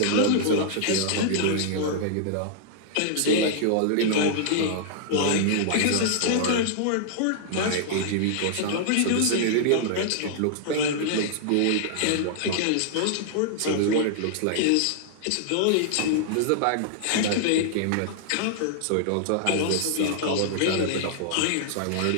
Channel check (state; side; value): different; both; correlation -0.01